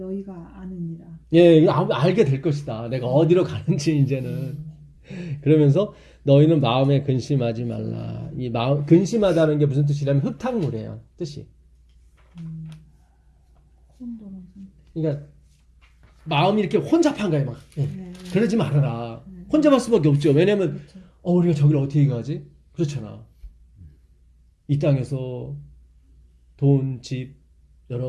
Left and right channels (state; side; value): identical; both; correlation 1.00